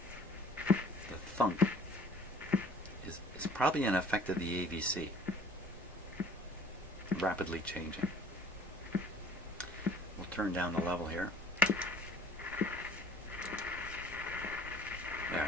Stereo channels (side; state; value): both; normal; correlation 0.51